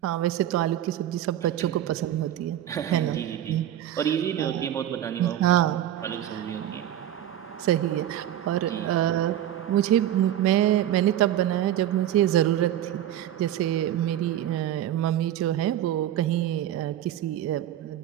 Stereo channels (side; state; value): left; quieter; 11.8 dB